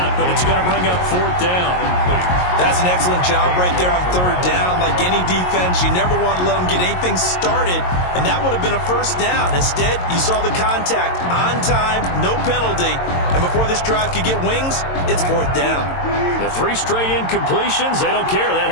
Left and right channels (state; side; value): late; right; 22 ms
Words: but it's going to bring up 4th down. That's an excellent job right there on 3rd down. Like any defense, you never want to let them get anything started, and that would have been a first down. Instead, you saw the contact on time, no penalty, and before this drive could get wings, it's 4th down. The 3 straight incompletions, they don't care. That